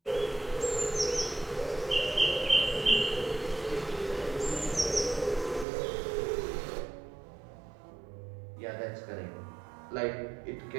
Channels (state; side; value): drops out; left; at 5.7 s